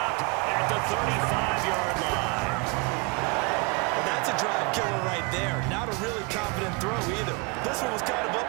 at the 35-yard line. Well, that's a drive killer right there. Not a really confident throw either. This one was kind of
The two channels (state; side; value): quieter; left; 29.8 dB